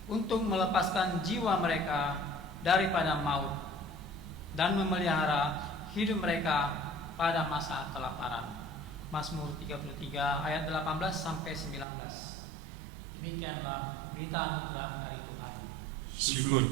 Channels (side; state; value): left; drops out; at 11.9 s